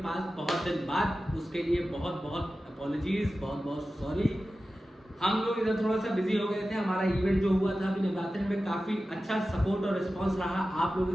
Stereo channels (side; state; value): both; normal; correlation 0.94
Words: पास बहुत दिन बाद। उसके लिए बहुत बहुत अपॉलॉजीज, बहुत बहुत सॉरी। हम लोग इधर थोड़ा सा बिजी हो गए थे। हमारा इवेंट जो हुआ था अभी नवरात्रि में काफ़ी अच्छा सपोर्ट और रिस्पांस रहा आप लोगों